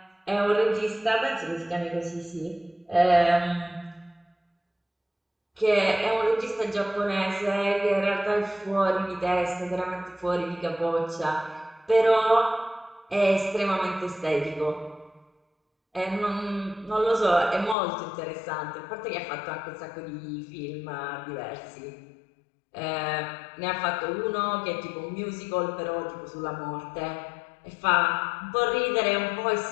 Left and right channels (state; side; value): drops out; right; at 17.8 s